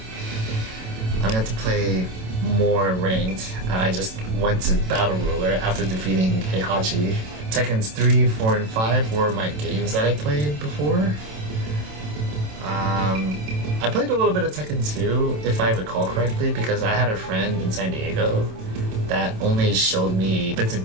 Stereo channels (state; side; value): late; left; 27 ms